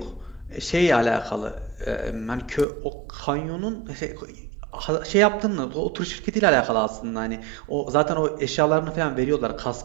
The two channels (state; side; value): drops out; left; at 2.7 s